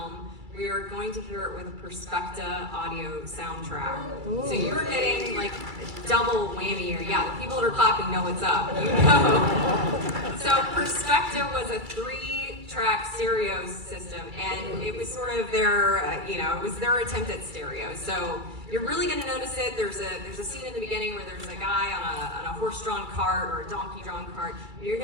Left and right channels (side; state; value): left; late; 2.3 ms